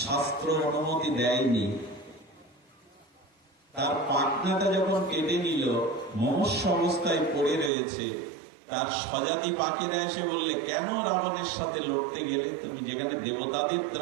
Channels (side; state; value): left; drops out; at 7.7 s